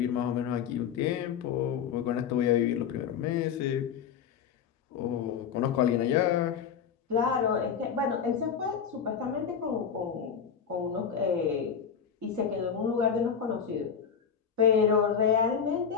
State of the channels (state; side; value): quieter; right; 7.4 dB